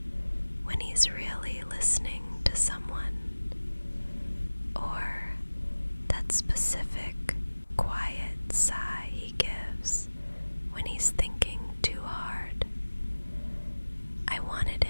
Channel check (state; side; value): inverted; both; correlation -1.00